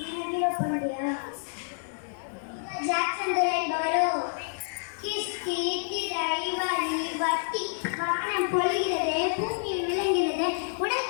பொழிகிறது, பூமியில் விளங்குகிறது,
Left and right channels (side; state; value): right; silent; digital silence